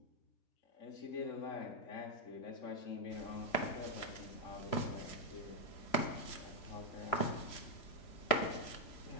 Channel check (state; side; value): late; right; 3.0 ms